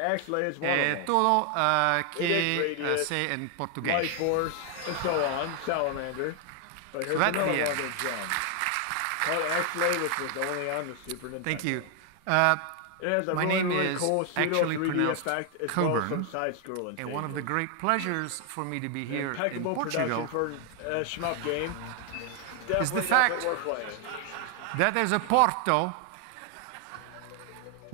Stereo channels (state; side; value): different; both; correlation 0.00